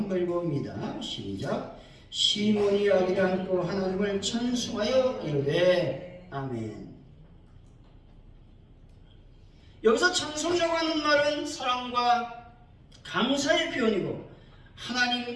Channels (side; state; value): both; identical; correlation 1.00